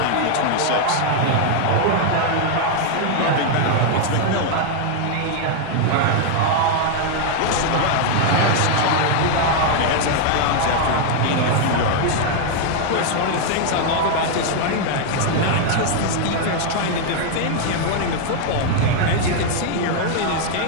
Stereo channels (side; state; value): both; different; correlation 0.00